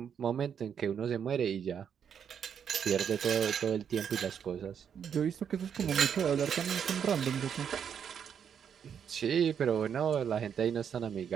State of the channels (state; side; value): quieter; left; 7.9 dB